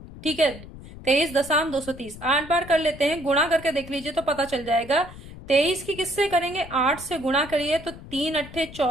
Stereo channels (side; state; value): left; noise; rumble, 16 dB below the sound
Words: ठीक है, 23 दशम 230, 8 बार कर लेते हैं, गुणा करके देख लीजिए तो पता चल जाएगा। 23 की किससे करेंगे, 8 से गुणा करिए तो 3 अट्ठे